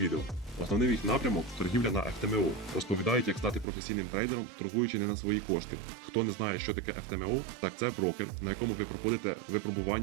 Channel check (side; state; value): left; drops out; at 3.7 s